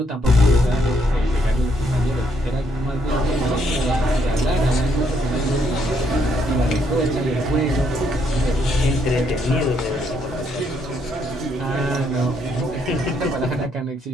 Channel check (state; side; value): normal; both; correlation 0.72